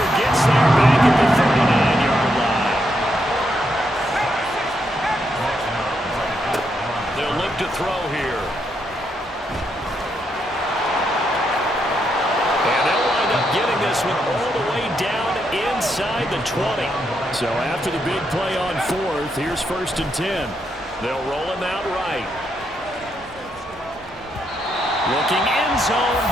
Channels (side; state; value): both; normal; correlation 0.79